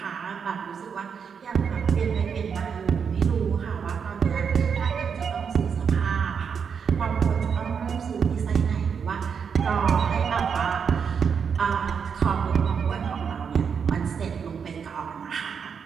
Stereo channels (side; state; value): left; quieter; 6.6 dB